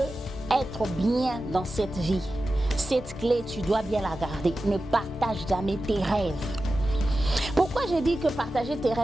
être bien dans cette vie, cette clé, tu dois bien la garder. Ne partage jamais tes rêves. Pourquoi j'ai dit que partager tes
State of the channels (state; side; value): normal; both; correlation 0.93